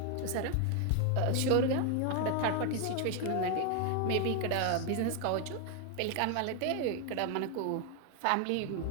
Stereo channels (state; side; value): different; both; correlation 0.01